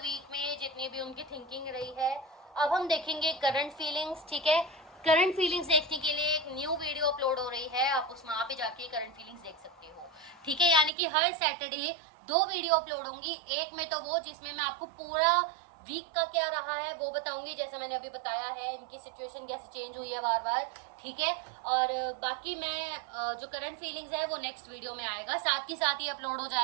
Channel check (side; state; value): left; drops out; at 10.9 s